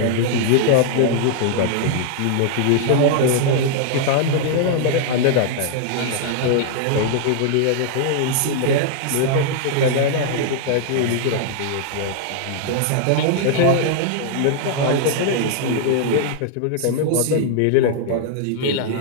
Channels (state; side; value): different; both; correlation -0.01